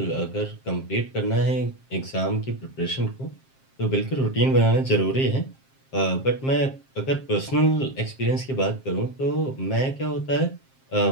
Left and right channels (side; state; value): right; late; 7.5 ms